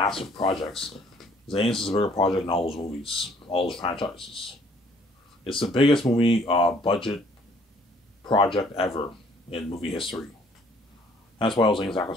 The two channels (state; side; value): normal; both; correlation 0.60